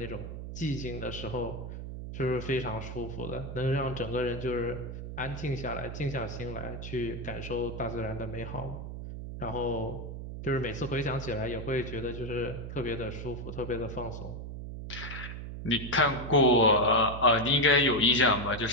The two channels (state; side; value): noise; right; hum, 8 dB below the sound